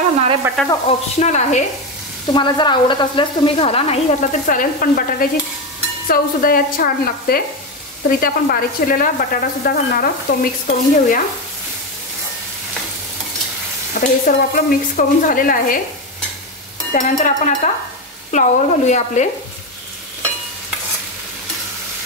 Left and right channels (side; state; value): both; normal; correlation 0.13